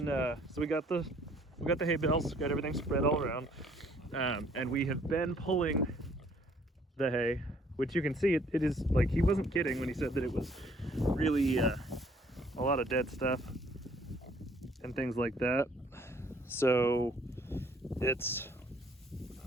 so we got the hay bales, got everything spread all around, and we have been pulling the hay, which you can see it is like, he wasn't kidding when he said that it was really a lot of dead stuff and things like that. So it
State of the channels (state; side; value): normal; both; correlation 0.61